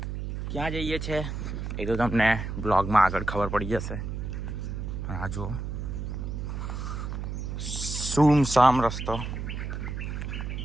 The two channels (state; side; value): noise; right; hum, 5 dB below the sound